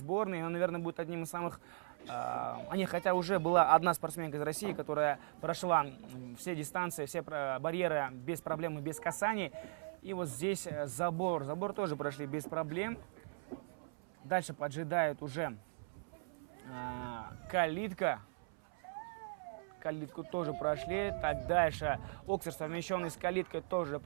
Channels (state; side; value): silent; left; 52 dB below the other